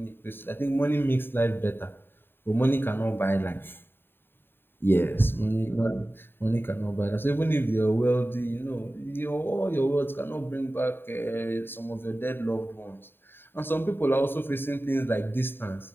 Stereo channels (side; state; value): right; late; 0.10 ms